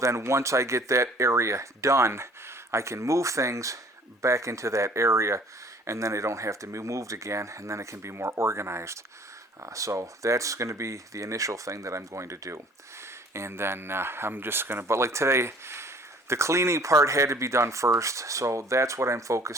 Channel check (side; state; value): both; normal; correlation 0.53